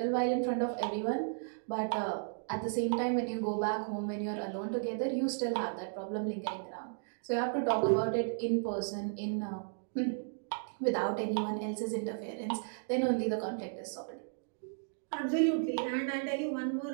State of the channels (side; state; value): left; silent; digital silence